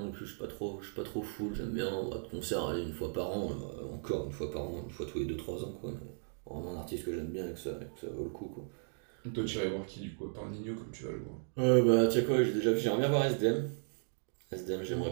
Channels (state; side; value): silent; left; digital silence